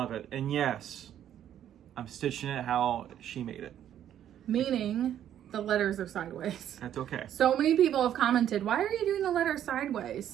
it. And yes, I'm stitching it how she made it. Meaning the letters are sideways. That's okay. So many people have commented, why are you doing the letters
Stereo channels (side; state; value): left; quieter; 10.6 dB